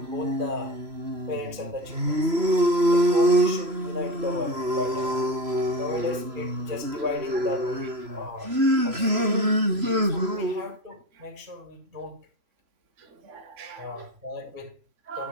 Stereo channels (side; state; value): left; late; 3.0 ms